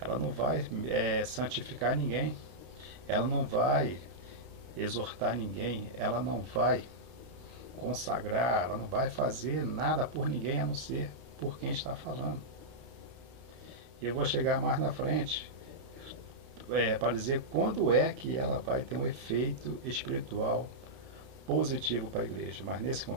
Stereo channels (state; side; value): late; left; 31 ms